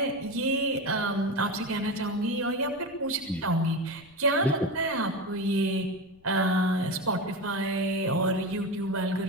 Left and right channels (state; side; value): noise; left; rumble, 30 dB below the sound